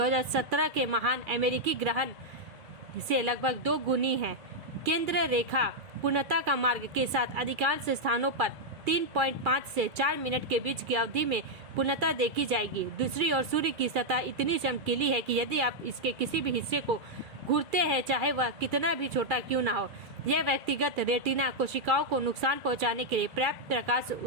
के महान अमेरिकी ग्रहण से लगभग 2 गुनी है। केंद्र रेखा पूर्णता का मार्ग के साथ अधिकांश स्थानों पर 3.5 से 4 मिनट के बीच की अवधि में पूर्णता देखी जाएगी। दूसरी ओर सूर्य की सतह इतनी चमकीली है कि यदि आप इसके किसी भी हिस्से को घूरते हैं, चाहे वह कितना भी छोटा क्यों ना हो, यह व्यक्तिगत रेटिना कोशिकाओं को नुकसान पहुंचाने के लिए पर्याप्त प्रकाश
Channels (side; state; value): left; late; 2.3 ms